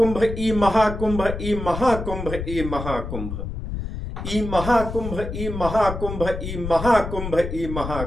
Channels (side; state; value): left; noise; rumble, 6 dB below the sound